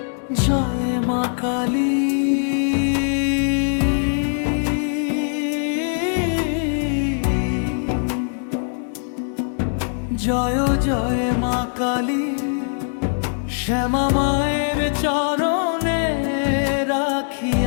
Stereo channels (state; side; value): silent; right; digital silence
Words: জয় মা কালী, জয় জয় মা কালী। শ্যামা মায়ের চরণে রাখি